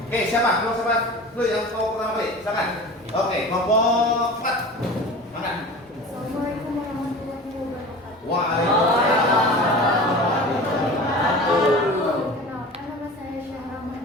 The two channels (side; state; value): both; normal; correlation 0.36